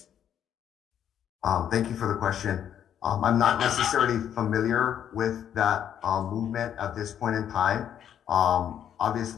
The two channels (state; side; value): quieter; right; 9.6 dB